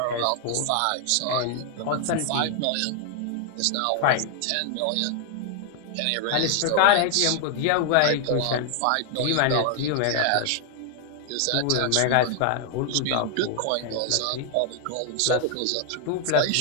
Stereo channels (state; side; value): different; both; correlation 0.00